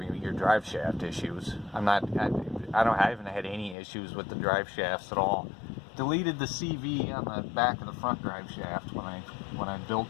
your drive shaft issues. I haven't had any issues with the drive shafts at all. Deleted the CV on the back of the front drive shaft when I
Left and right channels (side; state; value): right; drops out; at 3.8 s